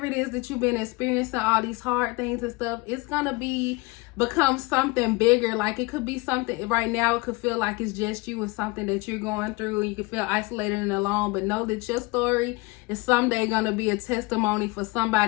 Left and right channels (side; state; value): right; quieter; 24.9 dB